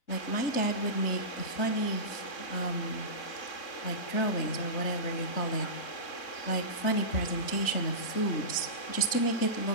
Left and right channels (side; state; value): right; late; 4.0 ms